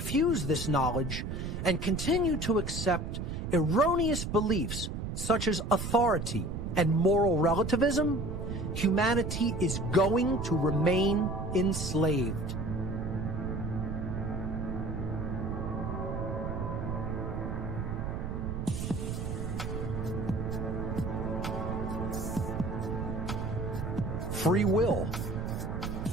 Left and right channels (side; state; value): right; noise; rumble, 4 dB below the sound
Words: this knowledge and continue to accept erroneous beliefs such as authority and moral relativism, humanity is going to remain enslaved. Free will.